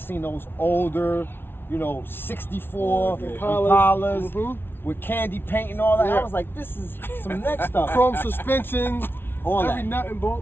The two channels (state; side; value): late; right; 0.11 ms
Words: seen those older, 64 Impalas with candy paint and all that. I was like, this is some next stuff. Chrome suspension, all every nut and